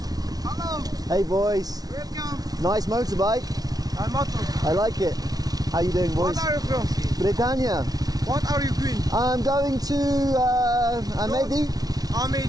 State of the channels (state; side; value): late; left; 0.19 ms